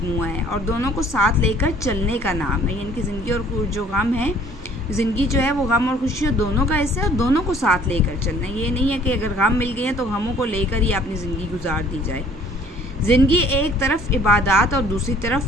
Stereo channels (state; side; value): normal; both; correlation 0.55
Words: ہے، اور دونوں کو ساتھ لے کر چلنے کا نام ہے. یعنی کہ زندگی اور جو غم ہے، زندگی جو ہے وہ غم اور خوشیوں دونوں کا حصہ ہے، اور دونوں کو ساتھ لے کر چلنا ہے. یہ نہیں ہے کہ اگر غم مل گئے ہیں تو غموں کو لے کر ہی اپنی زندگی گزار دی جائے. زندگی ایک طرف عبادات اور دوسری